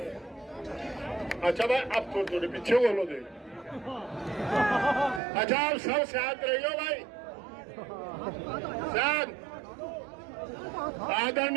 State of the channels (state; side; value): drops out; left; at 5.2 s